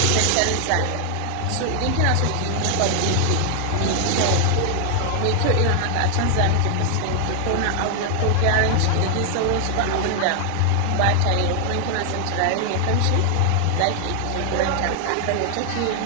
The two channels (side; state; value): both; different; correlation 0.00